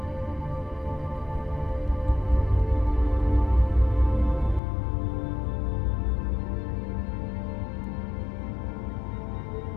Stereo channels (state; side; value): drops out; right; at 4.6 s